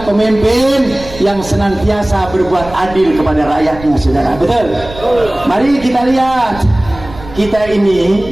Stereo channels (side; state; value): right; noise; rumble, 15 dB below the sound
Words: pemimpin yang senantiasa berbuat adil kepada rakyatnya, saudara, betul. Mari kita lihat, kita ini